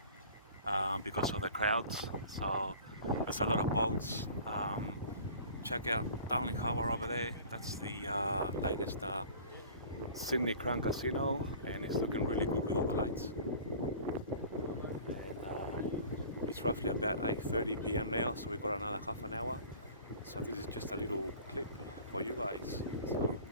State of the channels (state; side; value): inverted; both; correlation -0.44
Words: because of the crowds, so there's a lot of boats. Check out Darling Harbour over there. That's the latest Sydney Crown Casino, and it's looking really good with all the lights. And it's roughly about 8:30 p.m. now, so we've got another half an hour. So this is just a little clip for you guys. So